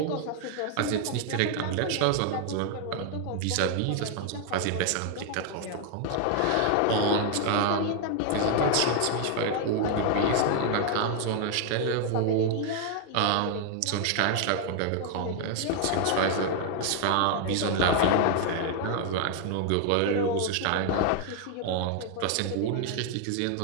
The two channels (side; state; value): both; different; correlation 0.00